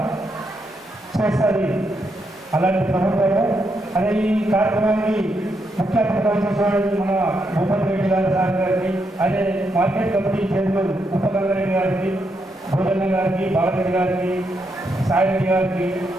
చేస్తుంది అలాంటి ప్రభుత్వము. అదే ఈ కార్యక్రమాన్ని ముఖ్య అతిథి మన భూపతి రెడ్డి గారి సార్ గారికి, అదే మార్కెట్ కమిటీ చైర్మన్ ఉపగంగారెడ్డి గారికి, భోజన్న గారికి, బాలరెడ్డి గారికి, సాయిరెడ్డి గారికి,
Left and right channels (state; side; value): normal; both; correlation 0.80